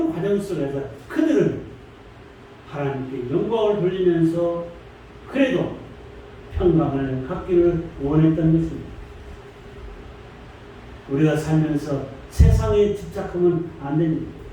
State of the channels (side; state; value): both; identical; correlation 1.00